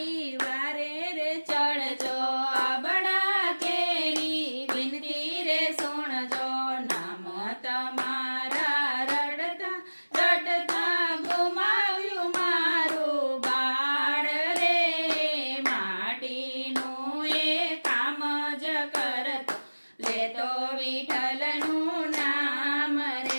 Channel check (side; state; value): both; inverted; correlation -1.00